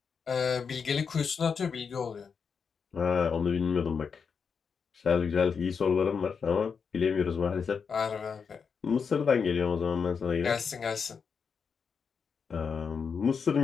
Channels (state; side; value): quieter; right; 6.0 dB